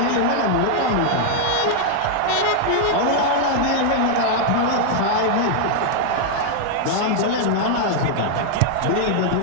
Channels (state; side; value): different; both; correlation 0.00